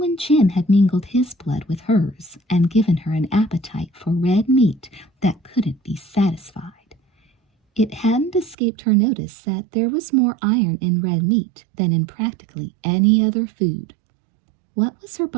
Jim had mingled his blood with hers and given her an appetite for red meat that couldn't be satisfied. It hadn't escaped her notice that there was more iron in red meat than in practically any other food. What was her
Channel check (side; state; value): left; drops out; at 8.6 s